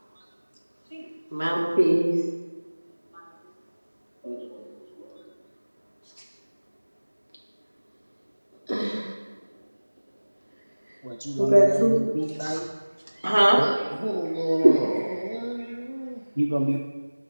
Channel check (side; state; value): both; inverted; correlation -1.00